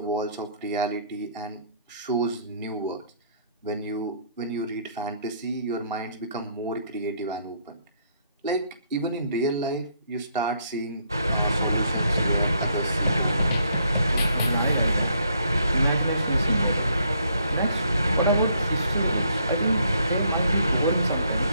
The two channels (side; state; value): both; inverted; correlation -0.69